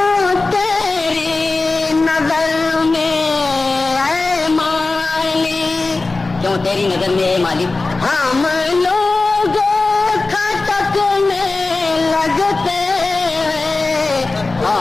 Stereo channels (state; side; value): quieter; right; 3.5 dB